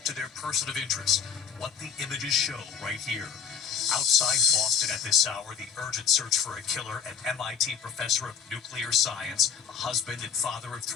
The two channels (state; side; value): quieter; right; 7.1 dB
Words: to their person of interest. What the images show right here. Outside Boston at this hour, the urgent search for a killer, an MIT professor of nuclear science, a husband and father of